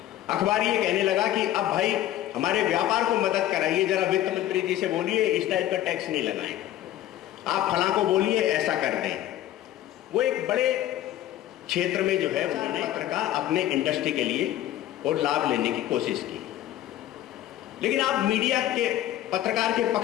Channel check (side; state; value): right; quieter; 13.2 dB